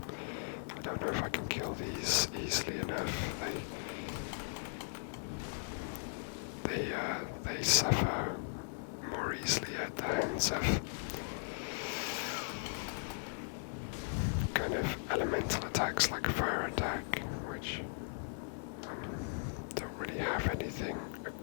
I don't know if I can kill these easily enough. They suffer more easily at the hands of kind of elemental attacks like a fire attack, which don't really have anything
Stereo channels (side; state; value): right; silent; digital silence